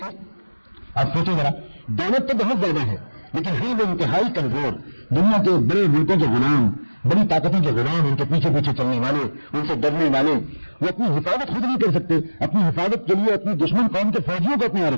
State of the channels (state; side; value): inverted; both; correlation -1.00